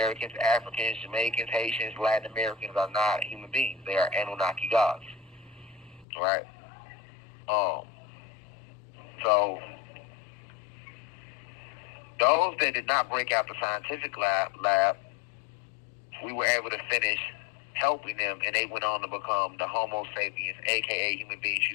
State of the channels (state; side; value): drops out; right; at 6.1 s